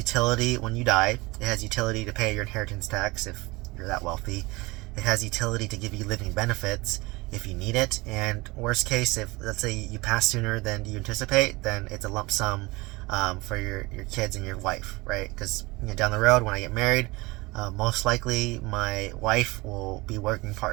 when you die. It has utility to pay your inheritance tax if you're that wealthy. It has utility to give you living benefits if you need it. And worst case, if let's say you pass sooner than you anticipate, then it's a lump sum for your kids and your wife, right? Because down the road when I get married, most likely my wife will be working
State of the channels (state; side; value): quieter; left; 23.2 dB